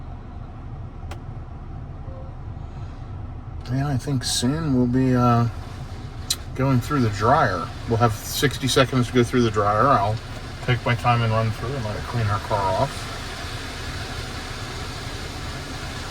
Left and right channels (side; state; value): both; identical; correlation 1.00